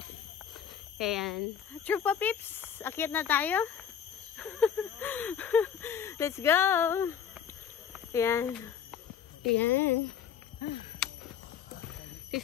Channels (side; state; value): right; quieter; 8.3 dB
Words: Ayan. Trupa Pips, akyat na tayo. Let's go. Ayan. Ayan.